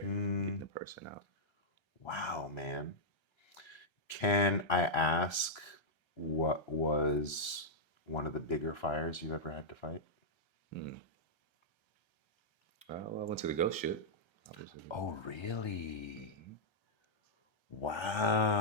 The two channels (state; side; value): late; right; 1.3 ms